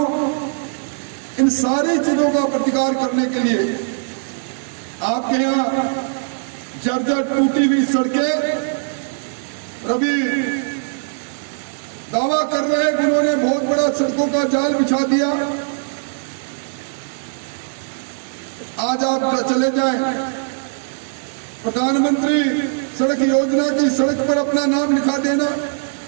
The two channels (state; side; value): silent; left; digital silence